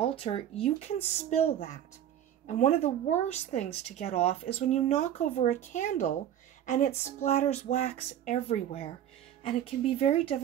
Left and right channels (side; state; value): left; quieter; 10.7 dB